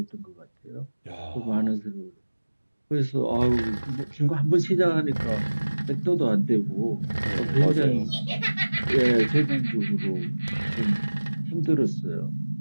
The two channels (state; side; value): inverted; both; correlation -1.00